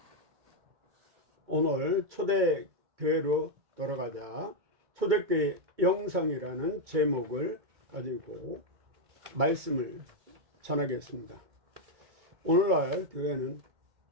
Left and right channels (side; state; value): left; late; 2.2 ms